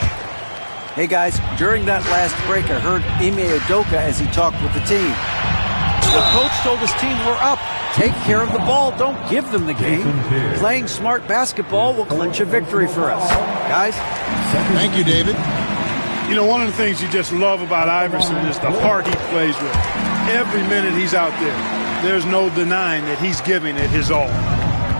Hey guys, during that last break I heard Ime Udoka as he talked with the team. The coach told his team, we're up. Take care of the ball. Don't give them the game. Playing smart basketball will clinch a victory for us. Guys? Thank you, David. You know, one of the things you just love about Iverson is the heart he plays with. Every minute he's out there, there's no denying that he's giving it his all.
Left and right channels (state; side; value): inverted; both; correlation -1.00